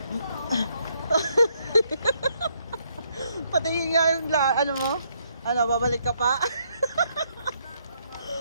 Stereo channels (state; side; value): inverted; both; correlation -0.73